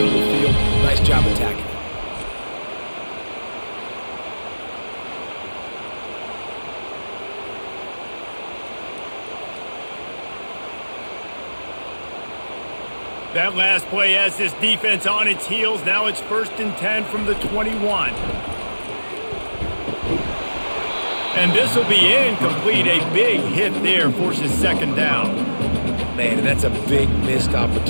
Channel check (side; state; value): both; inverted; correlation -1.00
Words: of the field. Nice job attacking it. That last play has this defense on its heels. Now it's 1st and 10 from the 21. And this will be incomplete. A big hit there forces second down. Man, and that's a big missed